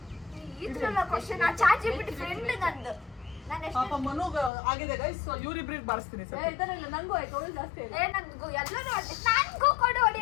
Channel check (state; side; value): drops out; right; at 4.5 s